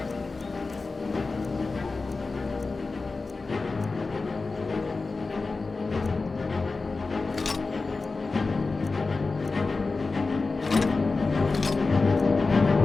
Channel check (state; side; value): quieter; right; 3.9 dB